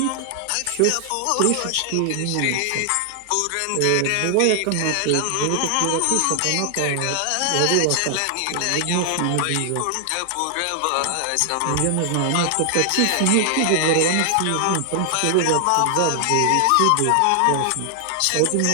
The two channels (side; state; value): both; different; correlation 0.00